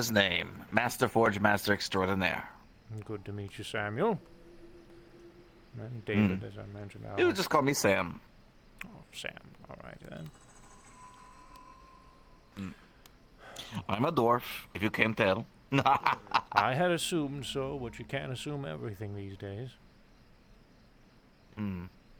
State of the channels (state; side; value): identical; both; correlation 1.00